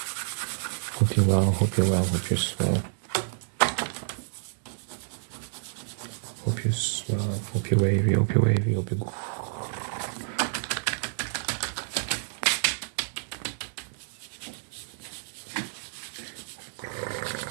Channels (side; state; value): left; silent; 59 dB below the other